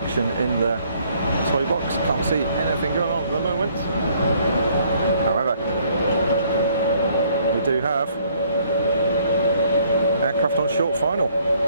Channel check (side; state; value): both; inverted; correlation -0.64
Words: in the toy box. Can't see anything going on at the moment. However, we do have aircraft on short final.